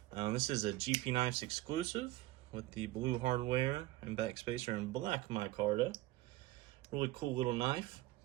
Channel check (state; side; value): quieter; left; 17.7 dB